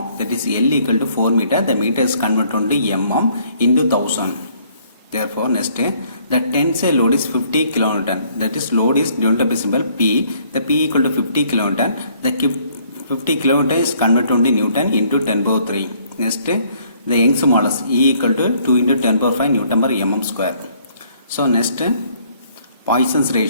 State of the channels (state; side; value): inverted; both; correlation -0.63